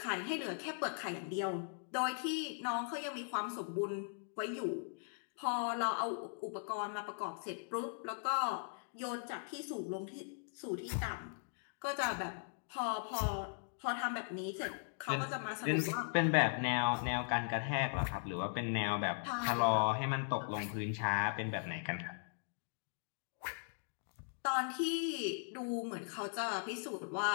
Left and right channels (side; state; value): right; silent; digital silence